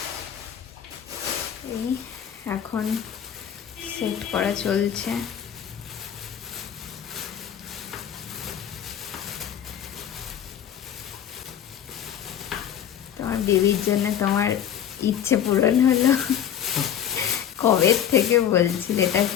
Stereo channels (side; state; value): right; quieter; 9.6 dB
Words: এই এখন সেট করা চলছে। তোমার বেবির জন্য তোমার ইচ্ছে পূরণ হলো। কবে থেকে বলছিল এটা